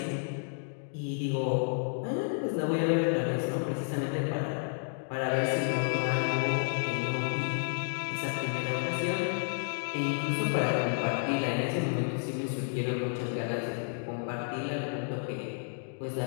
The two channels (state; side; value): silent; right; digital silence